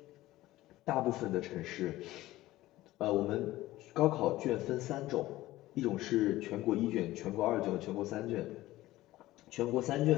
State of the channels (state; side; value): quieter; right; 16.6 dB